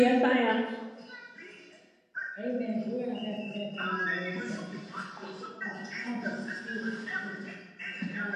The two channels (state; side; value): identical; both; correlation 1.00